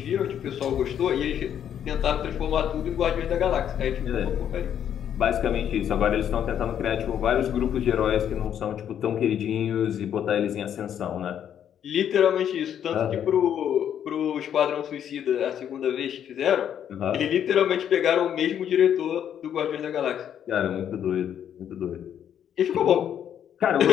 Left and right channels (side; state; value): right; quieter; 9.4 dB